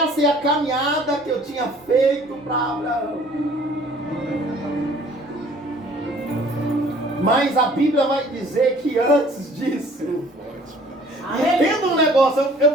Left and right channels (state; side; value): normal; both; correlation 0.54